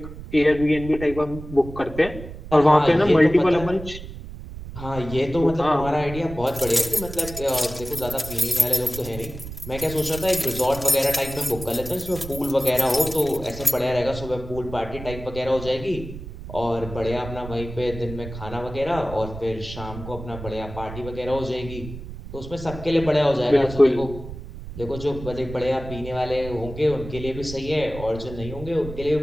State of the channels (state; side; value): noise; right; rumble, 12 dB below the sound